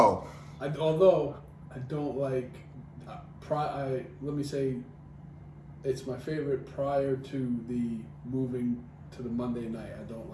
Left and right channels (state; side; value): identical; both; correlation 1.00